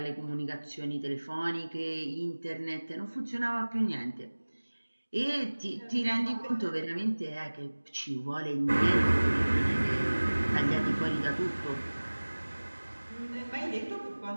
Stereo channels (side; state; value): both; inverted; correlation -1.00